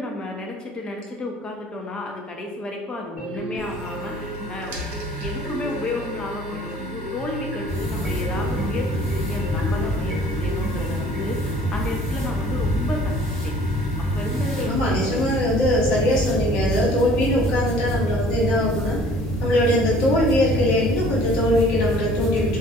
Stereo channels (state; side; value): normal; both; correlation 0.52